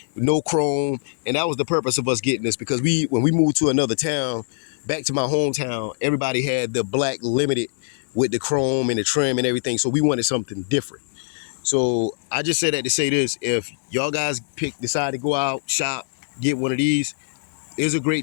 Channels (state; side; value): silent; right; digital silence